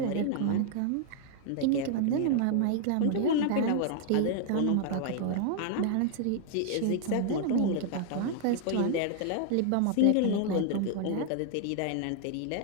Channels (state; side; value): different; both; correlation 0.00